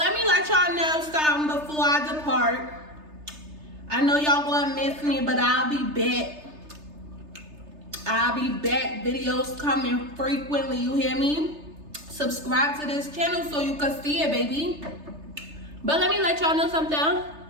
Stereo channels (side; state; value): left; late; 3.3 ms